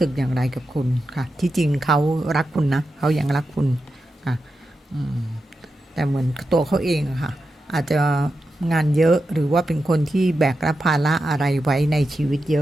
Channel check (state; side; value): normal; both; correlation 0.89